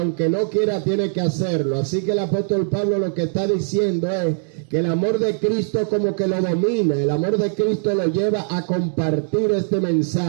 no quiera tiene que hacerlo. Así que el apóstol Pablo lo que está diciendo es que el amor de Cristo como que lo domina, el amor de Cristo lo lleva a compartir este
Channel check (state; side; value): silent; left; digital silence